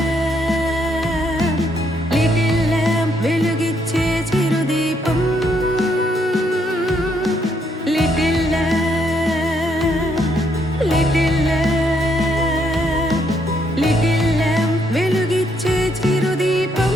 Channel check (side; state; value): both; normal; correlation 0.73